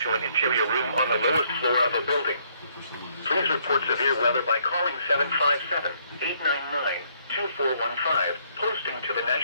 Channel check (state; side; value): inverted; both; correlation -0.68